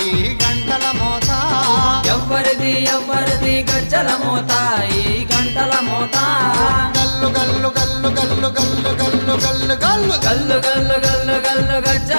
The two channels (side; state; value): both; inverted; correlation -1.00